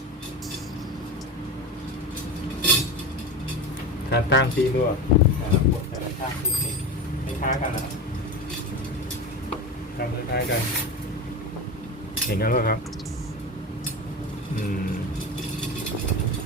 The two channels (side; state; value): both; normal; correlation 0.24